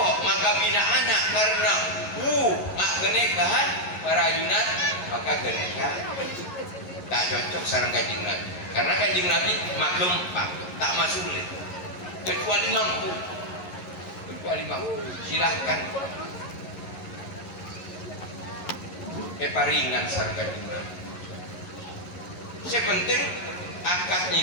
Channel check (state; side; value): late; right; 11 ms